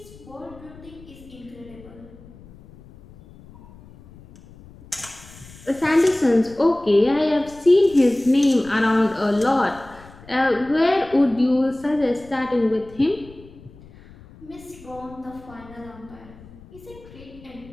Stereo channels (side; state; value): left; noise; rumble, 21 dB below the sound